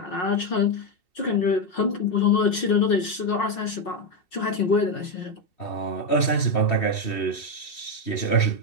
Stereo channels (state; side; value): late; right; 2.7 ms